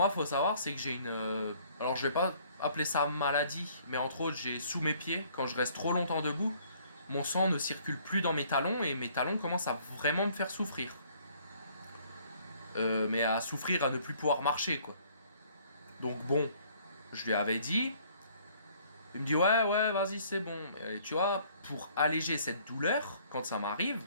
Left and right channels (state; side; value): inverted; both; correlation -0.59